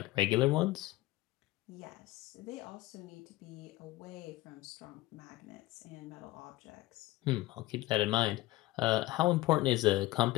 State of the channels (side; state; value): right; quieter; 18.0 dB